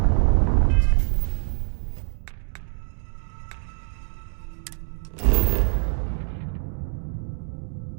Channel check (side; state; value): left; silent; digital silence